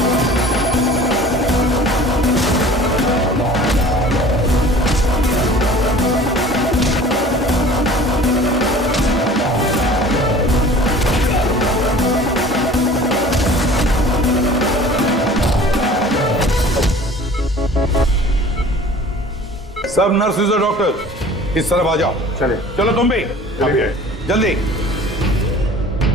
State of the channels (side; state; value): both; normal; correlation 0.46